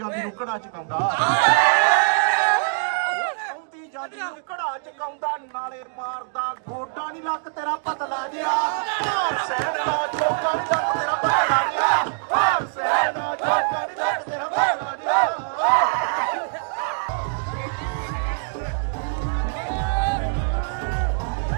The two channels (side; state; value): left; silent; digital silence